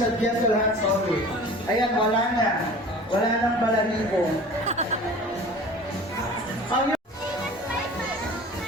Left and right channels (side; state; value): both; normal; correlation 0.42